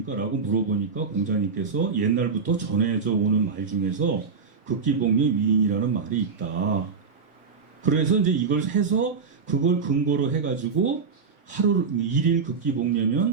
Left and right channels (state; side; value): quieter; left; 5.3 dB